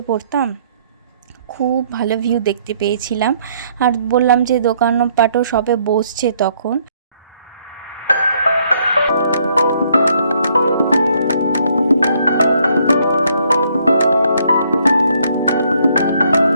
পড়তাম, খুব ভালো ভিউ দেখতে পেয়েছিলাম। আর বললাম যে দোকানপাটও সবে বসছে তখন।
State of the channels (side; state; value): both; inverted; correlation -0.68